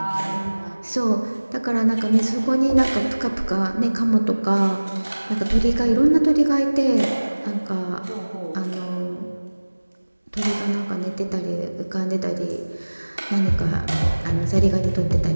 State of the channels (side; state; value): both; inverted; correlation -1.00